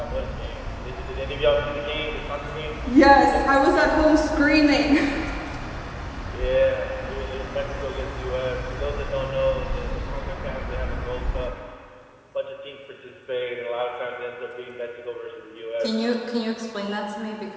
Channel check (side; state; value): both; identical; correlation 1.00